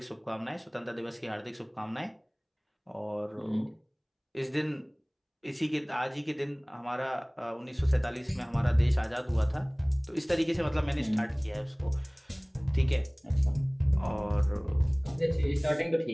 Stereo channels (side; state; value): both; identical; correlation 1.00